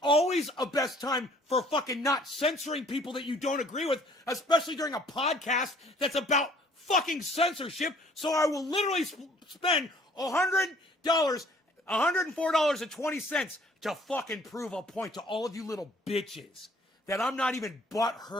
always a best time for fucking not censoring people that you don't agree with, especially during a podcast that's about fucking censorship. So I will literally spend $104.20 to fucking prove a point to all of you little bitches that I'm not even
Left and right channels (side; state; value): both; normal; correlation 0.57